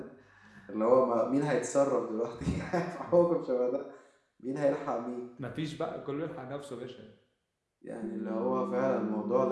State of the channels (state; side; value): identical; both; correlation 1.00